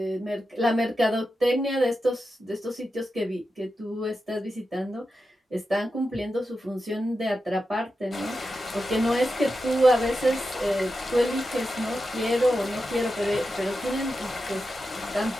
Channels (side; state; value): both; normal; correlation 0.90